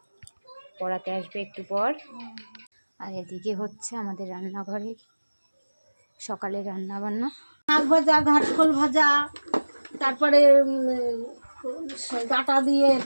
পড়াতে আসবে একটু পর। আর এদিকে হচ্ছে আমাদের রান্নাঘরে সকালে রান্না বান্না, শাক ভাজা, ঘাটকোল ভাজা, তারপরে ডাটা দিয়ে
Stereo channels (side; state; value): both; inverted; correlation -1.00